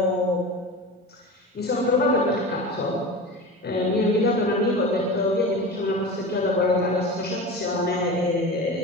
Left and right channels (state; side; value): normal; both; correlation 0.30